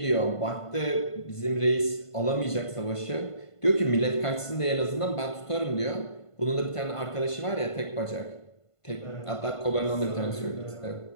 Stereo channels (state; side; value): late; right; 1.5 ms